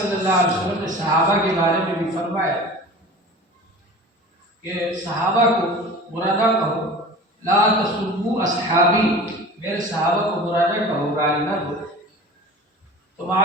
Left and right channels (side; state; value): both; normal; correlation 0.38